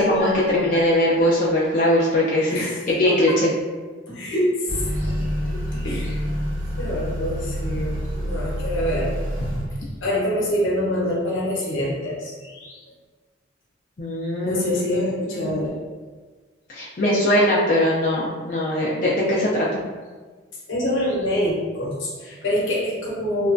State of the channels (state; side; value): normal; both; correlation 0.35